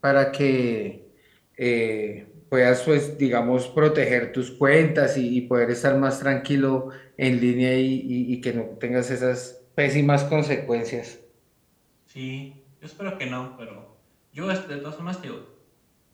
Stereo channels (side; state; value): both; identical; correlation 1.00